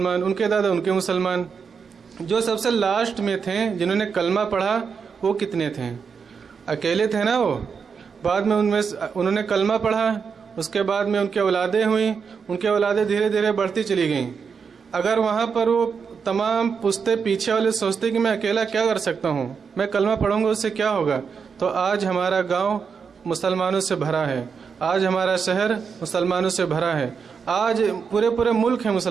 ان کے دادا؟ ان کے مسلمان. جو سب سے لاسٹ میں تھے جنہوں نے کلمہ پڑھا وہ کتنے تھے؟ اکیلے تھے نا وہ. بعد میں انہوں نے کلمہ پڑھا، اس کے بعد میں ان کی اولادیں ہوئیں، ان کی اولادیں دھیرے دھیرے بڑھتی چلی گئیں. اگر وہاں پر وہ تمام پشتے پیچھے والے سوچتے کہ میں اکیلا کیا کر سکتا ہوں، میں کلمہ پڑھوں گا اس سے کیا ہوگا، تو آج ہمارا گاؤں مسلمانوں سے بھرا ہے، آج ہمارا شہر مسلمانوں سے بھرا ہے، آج پورے ملک ہے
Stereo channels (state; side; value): quieter; left; 6.0 dB